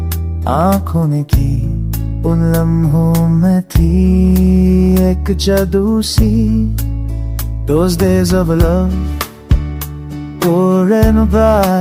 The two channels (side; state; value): both; identical; correlation 1.00